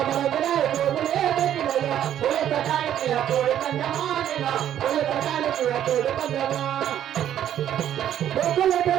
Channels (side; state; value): left; quieter; 10.8 dB